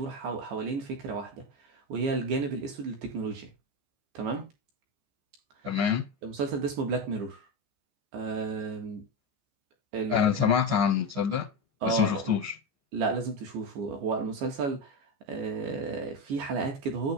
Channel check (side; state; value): left; late; 14 ms